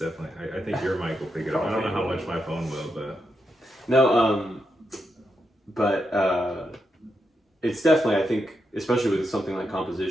I think your mic will pick it up. I don't know how much my phone will, but no. It's definitely, I think, especially with something like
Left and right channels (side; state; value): both; normal; correlation 0.84